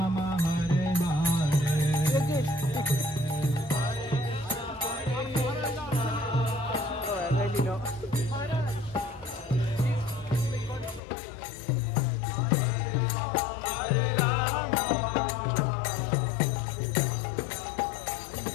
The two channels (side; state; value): right; drops out; at 11.0 s